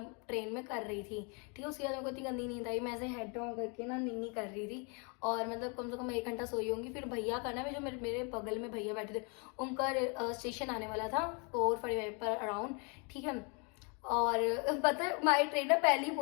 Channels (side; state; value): right; quieter; 34.9 dB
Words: कर रही थी, ठीक है। उसके बाद मेरे को इतनी गंदी नींद आई, मैं ऐसे हेड डाउन करके ना नीनी कर रही थी, और मतलब कम से कम 1 घंटा सोई होंगी। फिर भैया का ना, जो मेरे बगल में भैया बैठे थे, उनका स्टेशन आने वाला था 4:45 पर अराउंड, ठीक है। और पता है हमारी ट्रेन ना पहले ही